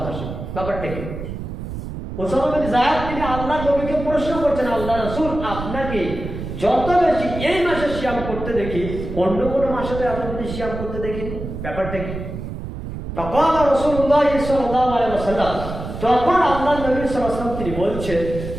মাসে। ব্যাপারটা কি? উসামা বিন যায়েদ তিনি আল্লাহর নবীকে প্রশ্ন করছেন আল্লাহ রাসূল আপনাকে যত বেশি এই মাসে সিয়াম করতে দেখি অন্য কোনো মাসে তো আপনি সিয়াম করতে দেখিনি, ব্যাপারটা কি? তখন রাসূলুল্লাহ সাল্লাল্লাহু আলাইহি ওয়াসাল্লাম তখন আল্লাহর নবী সাল্লাল্লাহু আলাইহি ওয়াসাল্লাম তিনি বলছেন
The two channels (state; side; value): noise; right; rumble, 8 dB below the sound